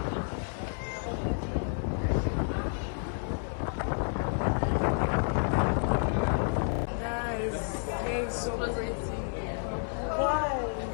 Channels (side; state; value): right; silent; 57 dB below the other